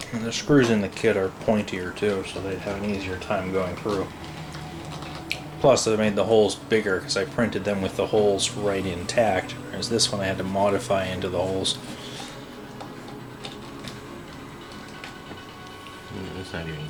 And the screws in the kit are pointier too, so they'd have an easier time going through. Plus, I made the holes bigger because I printed them with the holes right intact, whereas this one I had to modify into the holes. It's not even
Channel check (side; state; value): both; identical; correlation 1.00